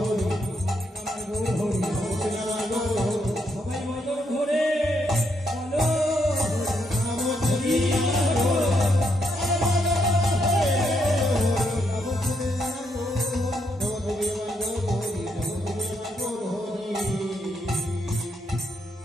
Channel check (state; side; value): normal; both; correlation 0.77